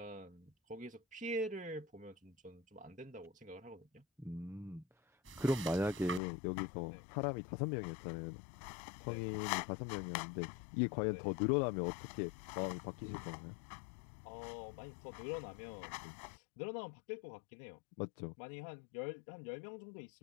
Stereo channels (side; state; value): right; drops out; at 6.2 s